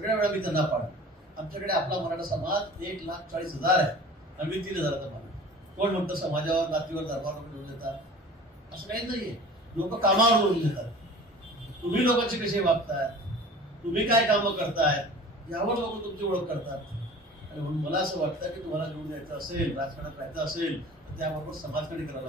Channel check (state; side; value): normal; both; correlation 0.43